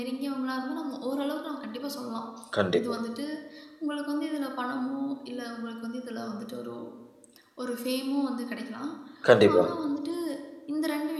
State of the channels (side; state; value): both; identical; correlation 1.00